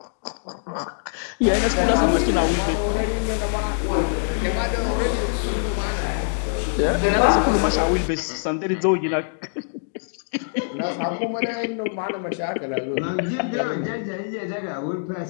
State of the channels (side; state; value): right; silent; digital silence